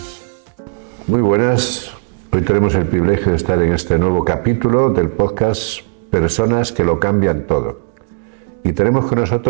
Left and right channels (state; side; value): silent; left; 59 dB below the other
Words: Muy buenas. Hoy tenemos el privilegio de estar en este nuevo capítulo del podcast Personas que lo cambian todo. Y tenemos con